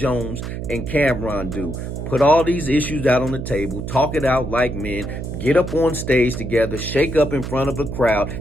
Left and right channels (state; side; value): noise; right; hum, 6 dB below the sound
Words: and Cameron do. Put all these issues out on the table, talk it out like men, get up on stage together, shake up in front of a crowd,